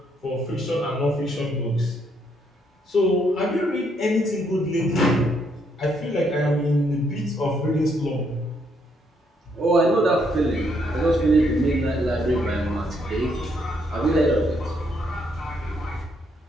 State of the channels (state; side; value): normal; both; correlation 0.73